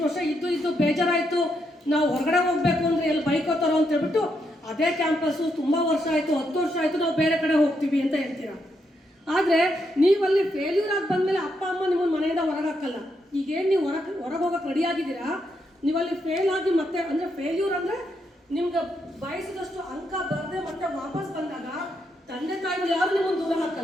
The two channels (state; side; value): normal; both; correlation 0.79